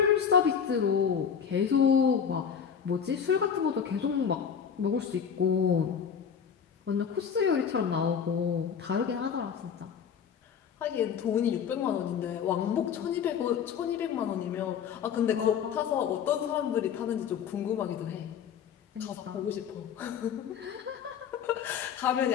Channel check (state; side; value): quieter; right; 7.4 dB